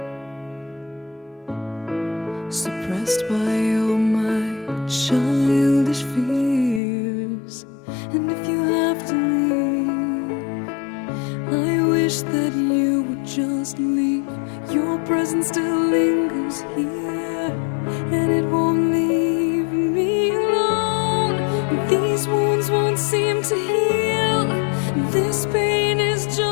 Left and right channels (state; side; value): drops out; right; at 6.8 s